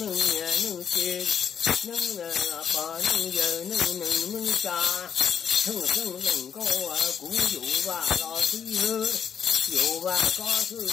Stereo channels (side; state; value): right; quieter; 7.7 dB